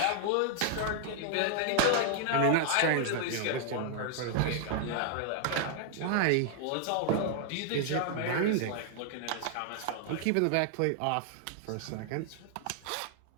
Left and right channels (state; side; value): different; both; correlation 0.00